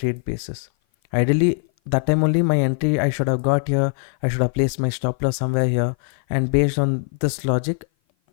basis. Ideally, that time only my entry I should have got here, I should have placed my stop loss somewhere here, and based on this logic,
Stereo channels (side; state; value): right; silent; 56 dB below the other